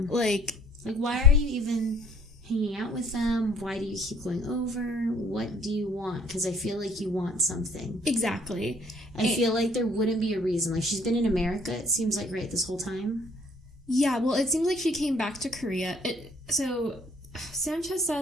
Like, why are you even hanging out with them? Why do you keep going over? What do you want? Because I feel like you want something. Exactly. I feel like there wouldn't be a reason. Like, she's been in America, it seems like, right, this whole time? Yeah, well, it seems like she came back to Korea. So Sanchez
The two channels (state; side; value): normal; both; correlation 0.59